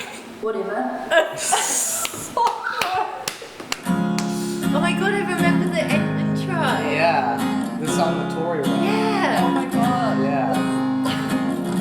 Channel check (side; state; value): both; identical; correlation 1.00